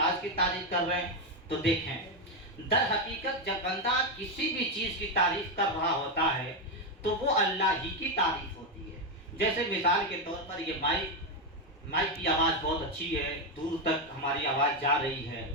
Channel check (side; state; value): both; normal; correlation 0.07